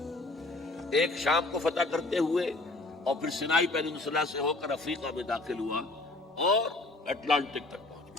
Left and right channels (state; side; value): quieter; right; 3.0 dB